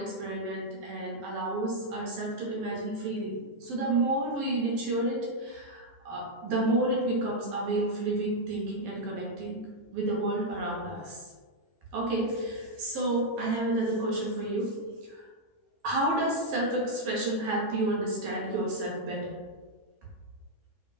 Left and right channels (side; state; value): left; late; 12 ms